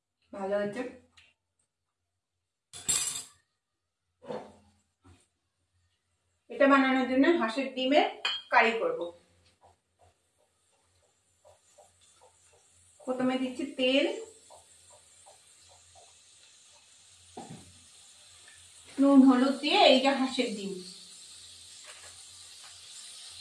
ভালো হয়েছে। এটা বানানোর জন্য হাঁসের ডিমের কারি করব। প্রথমে দিচ্ছি তেল, নুন হলুদ দিয়ে এই যে হাঁসের ডিম,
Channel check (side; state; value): both; identical; correlation 1.00